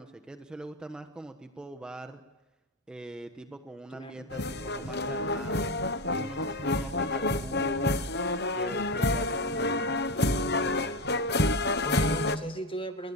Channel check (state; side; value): normal; both; correlation 0.16